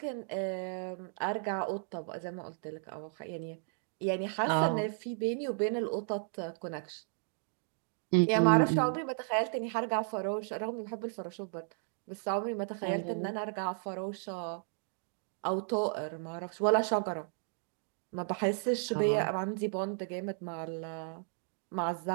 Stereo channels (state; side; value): silent; left; digital silence